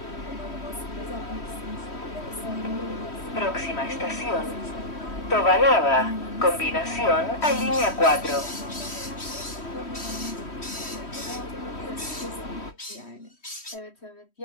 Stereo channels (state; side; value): late; right; 3.1 ms